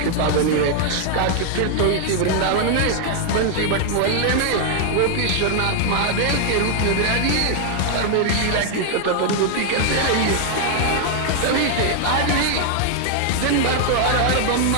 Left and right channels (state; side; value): different; both; correlation 0.00